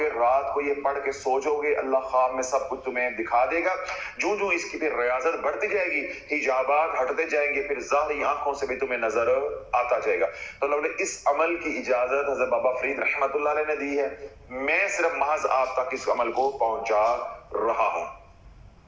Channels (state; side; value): identical; both; correlation 1.00